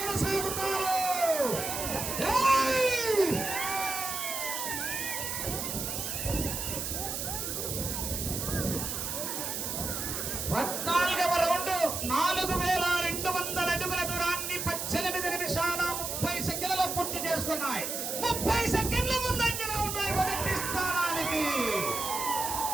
కొనసాగుతారు. 14వ రౌండ్ 4200 అడుగుల దూరాన్ని 18 నిమిషాల 30 సెకండ్లలో పూర్తి చేసుకున్నాయి. 30 సెకండ్ల ముందంజలో ఉన్నాయి 1వ స్థానానికి.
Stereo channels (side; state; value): right; noise; hiss, 3 dB below the sound